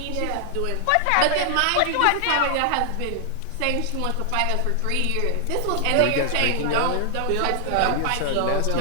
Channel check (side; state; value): both; different; correlation 0.00